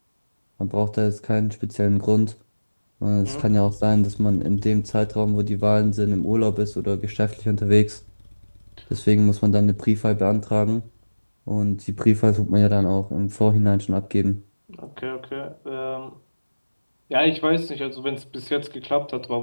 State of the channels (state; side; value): inverted; both; correlation -1.00